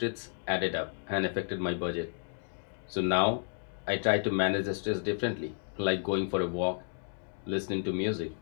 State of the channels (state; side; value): silent; right; 55 dB below the other